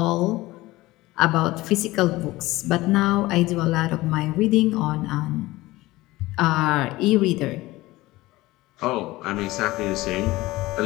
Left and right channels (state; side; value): quieter; right; 18.9 dB